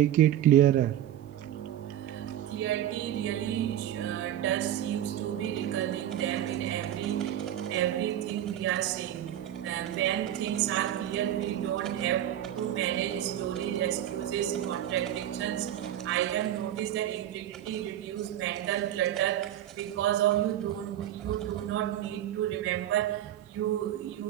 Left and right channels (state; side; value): quieter; left; 11.8 dB